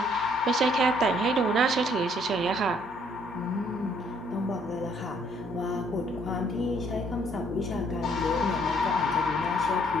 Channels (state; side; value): normal; both; correlation 0.65